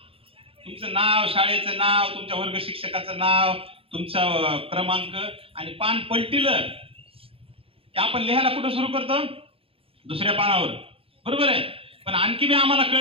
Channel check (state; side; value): late; left; 0.27 ms